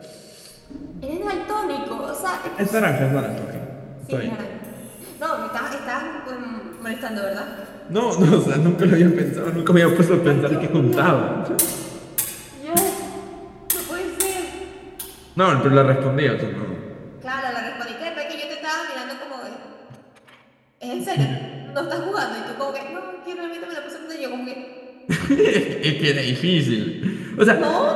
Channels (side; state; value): both; identical; correlation 1.00